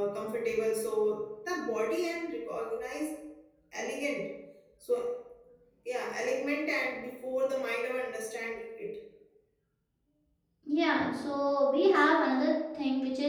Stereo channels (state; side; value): identical; both; correlation 1.00